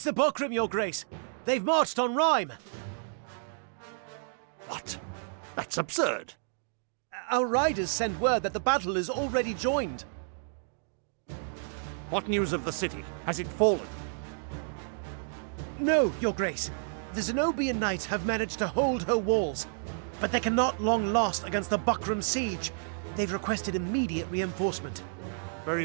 the Buckram, Your Grace. They've marched on Rhyme. What? That's absurd. Our riders send word that the battle is already joined. What news of the city? Has it fallen? No, Your Grace. The Zenobian knights have managed to hold her walls, but they cannot long last against the Buckram siege. They've requested immediate reinforcement.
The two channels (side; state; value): left; silent; digital silence